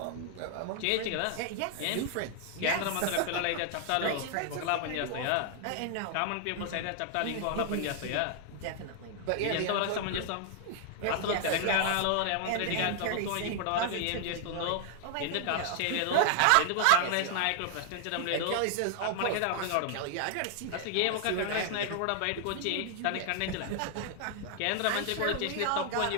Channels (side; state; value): both; different; correlation 0.00